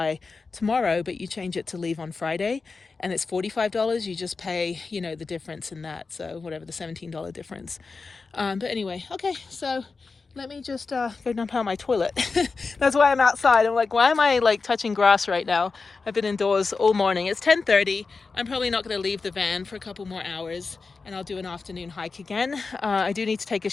tomorrow, but you change it to leave on Friday and it's $45, you just pay, you know, the difference in that. So whatever, the $17 difference. But anyway, okay, so let me just go dump out my toilet. That's why I'm outside. I'm like, why am I like touching grass right now? I've been indoors all morning. It's 10:30. I'm probably not going to leave the van for a couple more hours, and I'll do an afternoon hike again. I do need to take a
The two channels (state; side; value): quieter; right; 4.4 dB